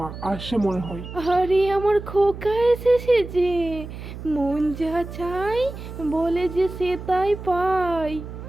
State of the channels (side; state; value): right; noise; hum, 11 dB below the sound